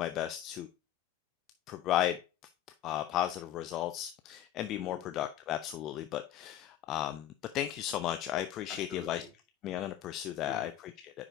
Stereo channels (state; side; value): quieter; right; 11.6 dB